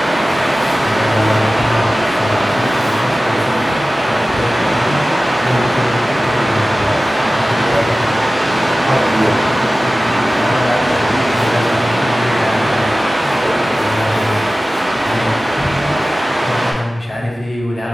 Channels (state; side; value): normal; both; correlation 0.96